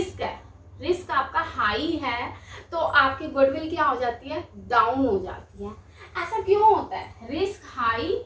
है, रिस्क आपका हाई है, तो आपकी गुडविल क्या हो जाती है, डाउन हो जाती है। ऐसा क्यों होता है, रिस्क हाई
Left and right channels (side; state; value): both; identical; correlation 1.00